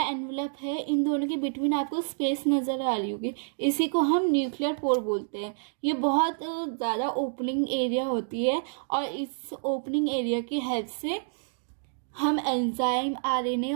एनवलप है, इन दोनों के बिटवीन आपको स्पेस नज़र आ रही होगी, इसी को हम न्यूक्लियर पोर बोलते हैं। ये बहुत ज़्यादा ओपनिंग एरिया होती है, और इस ओपनिंग एरिया की हेल्प से हम एंजाइम, RNA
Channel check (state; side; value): silent; left; digital silence